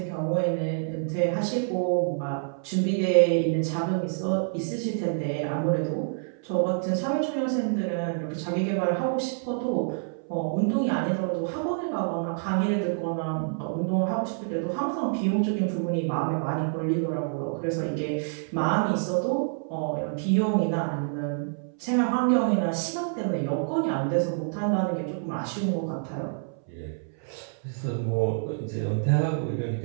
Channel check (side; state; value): left; silent; 60 dB below the other